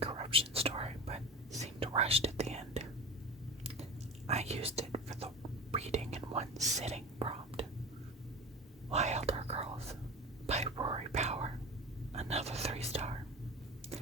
story, but seemed rushed at the end. I used it for the reading in one sitting prompt. Wilder Girls by Rory Power. Another 3-star.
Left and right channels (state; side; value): normal; both; correlation 0.32